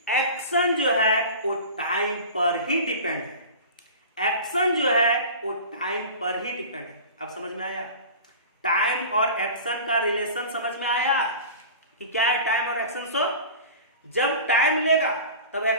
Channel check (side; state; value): both; inverted; correlation -0.36